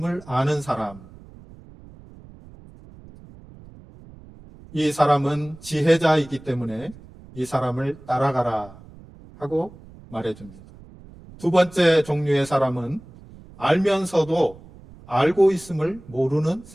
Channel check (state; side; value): noise; right; rumble, 21 dB below the sound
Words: 아는 사람. 이 사람은 지혜자이기 때문에 이 사람을 따라가라 하고 말해줍니다. 두 번째 종류의 사람은 알면서도 알고 있음을 모르는